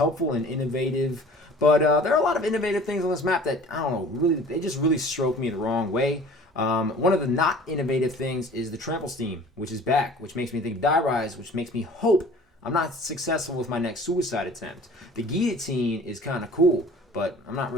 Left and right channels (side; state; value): both; normal; correlation 0.46